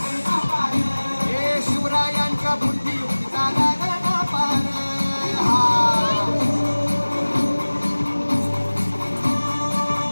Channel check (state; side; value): inverted; both; correlation -1.00